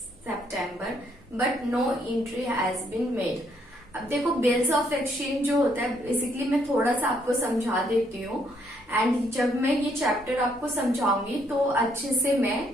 September, but no entry has been made. अब देखो बिल्स ऑफ एक्सचेंज जो होता है, बेसिकली मैं थोड़ा सा आपको समझा देती हूँ, एंड जब मैं ये चैप्टर आपको समझाऊंगी तो अच्छे से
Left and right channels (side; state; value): both; normal; correlation 0.71